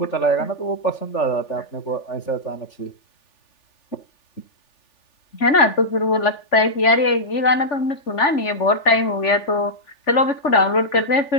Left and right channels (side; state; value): right; late; 3.4 ms